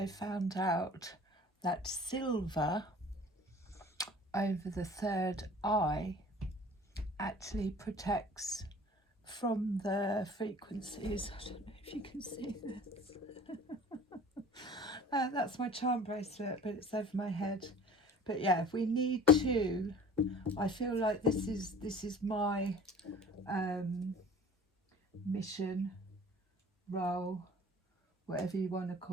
found out that silver over the third eye actually protects from the frequencies. I don't know if you can see this. That's my charm bracelet, but it's over my head. But yeah, if we need to, I feel like this is my mission, role, whatever you want to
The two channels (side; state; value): both; normal; correlation 0.45